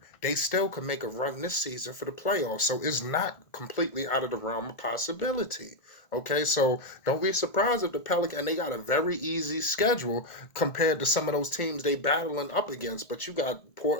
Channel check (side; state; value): right; late; 1.5 ms